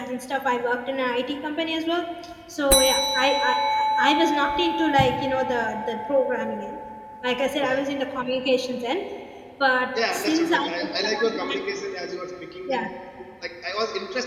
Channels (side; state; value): both; identical; correlation 1.00